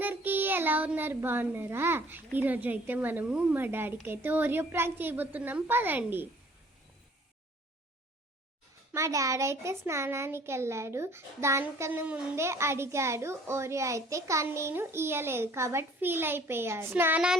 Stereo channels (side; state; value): both; normal; correlation 0.54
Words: ఎలా ఉన్నారు? బాగున్నారా? ఈరోజు అయితే మనము మా డాడీకి అయితే ఓరియో ప్రాంక్ చేయబోతున్నాం. పదండి. మా డాడీ అయితే స్నానానికి వెళ్ళాడు. దానికన్నా ముందే అడిగాడు ఓరియో అయితే, కానీ నేను ఇయ్యలేదు కాబట్టి ఫీల్ అయిపోయాడు.